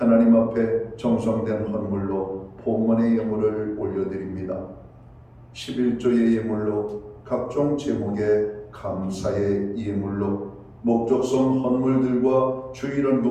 앞에 정성된 헌물로 봉헌의 예물을 올려드립니다. 11조의 예물로 각종 제목의 감사의 예물로 목적성 헌물들과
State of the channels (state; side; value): identical; both; correlation 1.00